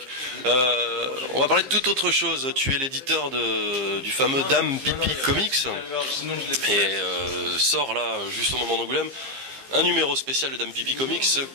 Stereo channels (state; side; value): late; left; 15 ms